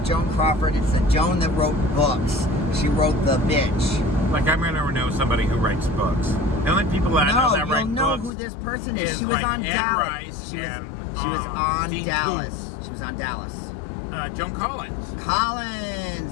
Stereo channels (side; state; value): right; drops out; at 8.3 s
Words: Joan Crawford. It's the Joan that wrote books. She wrote The Bitch. Like, I'm going to know somebody who writes books. The only people that I know that write you'll know books who this person is. is She was like on Anne Dallas. Rice She was and, on Dean Dallas. She was on Dallas. Joan Collins.